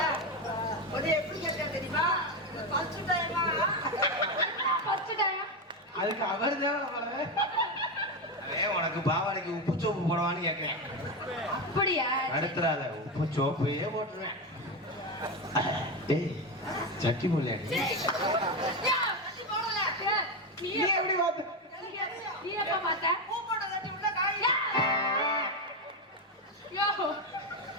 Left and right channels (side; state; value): both; normal; correlation 0.12